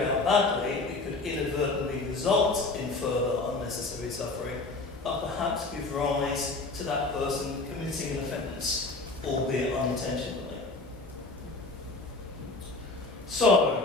out badly, it could inadvertently result in further unnecessary suffering, and perhaps give rise to that person committing an offence, albeit unintentionally.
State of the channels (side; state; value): right; quieter; 3.4 dB